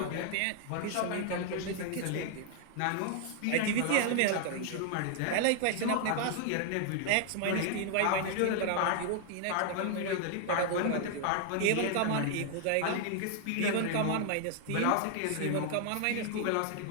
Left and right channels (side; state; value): both; different; correlation 0.00